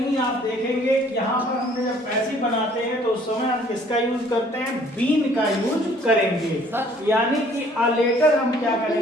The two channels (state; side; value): normal; both; correlation 0.58